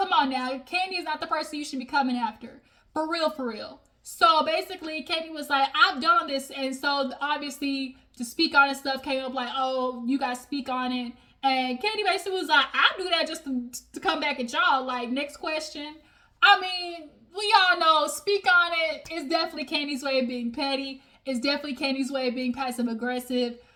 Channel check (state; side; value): identical; both; correlation 1.00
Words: on now. Kandi is not the person you should be coming after. For real. So basically, Kandi was like, I've done this. And so obviously, to speak on it stuff came up like, oh, you guys speak on it. And Kandi basically was like, I'll do that just to come back at y'all. Like, next question. I mean, we all know, speak on it is definitely Kandi's way of being petty. It's definitely Kandi's way of being passive aggressive.